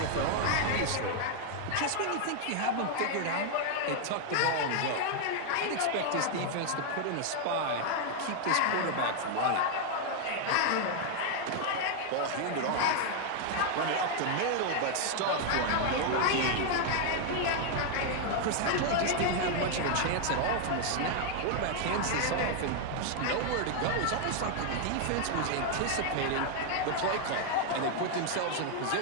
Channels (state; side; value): different; both; correlation 0.00